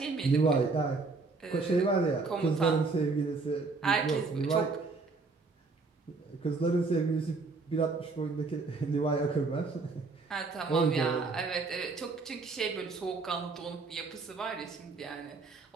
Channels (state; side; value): quieter; left; 4.0 dB